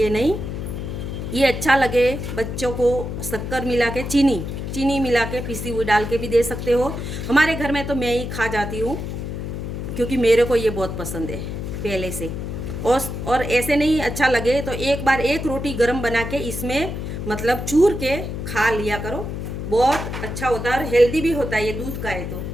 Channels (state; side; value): noise; left; hum, 5 dB below the sound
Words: नहीं। ये अच्छा लगे बच्चों को, शक्कर मिला के चीनी मिला के पिसी हुई डाल के भी दे सकते हो। हमारे घर में तो मैं ही खा जाती हूँ क्योंकि मेरे को ये बहुत पसंद है पहले से। और ऐसे नहीं अच्छा लगे तो एक बार एक रोटी गरम बना के इसमें मतलब चूर के खा लिया करो, बहुत अच्छा होता है और हेल्दी भी होता है, ये दूध का है